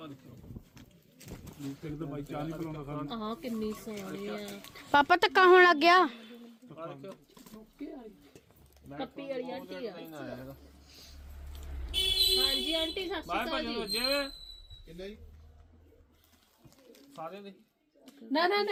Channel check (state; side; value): identical; both; correlation 1.00